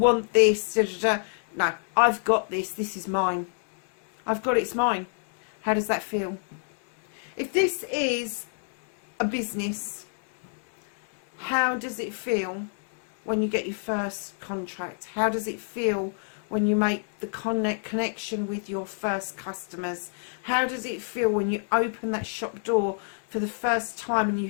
this. Da, da, da. No, I've got this. This is mine. I've got it. It's mine. How does that feel? If this is a business, how does it feel when you get your first contract? How does it feel when you make the connection with your first customers? How does it feel when you open that shop door for the first time and you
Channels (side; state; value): right; silent; digital silence